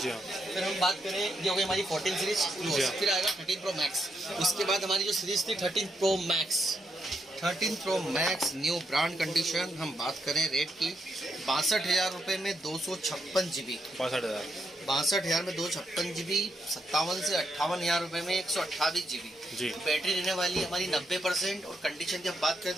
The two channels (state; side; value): normal; both; correlation 0.80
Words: जी हाँ। फिर हम बात करें, ये हो गई हमारी 14 सीरीज जी हाँ। फिर आएगा 13 प्रो मैक्स। उसके बाद हमारी जो सीरीज थी 13 pro max, 13 pro max new brand condition. हम बात करें रेट की 62,000 रुपये में 256 GB, 62,000। 62,000 में 256 GB, 57 से 58,000 रुपये में 128 GB। जी। बैटरी रहने वाली है हमारी 90% और कंडीशन की हम बात करें